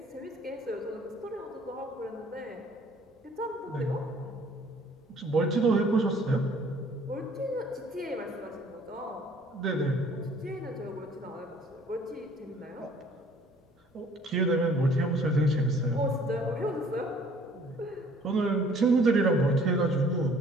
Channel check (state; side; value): normal; both; correlation 0.56